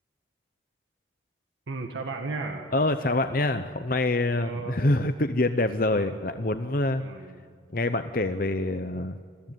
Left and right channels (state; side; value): normal; both; correlation 0.41